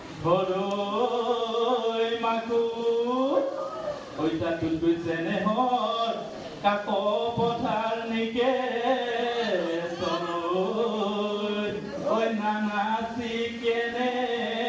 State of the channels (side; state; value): both; identical; correlation 1.00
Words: হৰৈ মাকো ঐ চাতুত কৈছেনে হৰ কাক পথাৰ নিকে তলৈ ঐ নানাচি কেনে